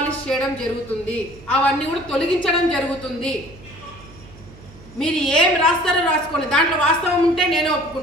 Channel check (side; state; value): right; noise; hum, 21 dB below the sound